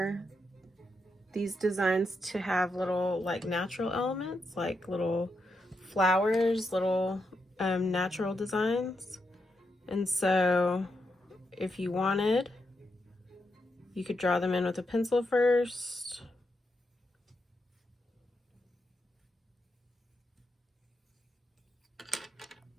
these designs to have little like natural elements, like little flowers, little natural designs. And so if you wanted, you could draw them in with a pencil first.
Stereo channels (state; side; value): normal; both; correlation 0.84